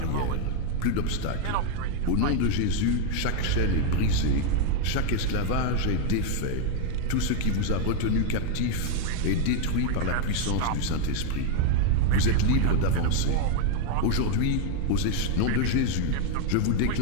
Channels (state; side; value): different; both; correlation 0.01